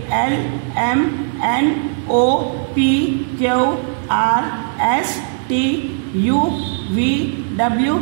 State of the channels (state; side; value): silent; left; digital silence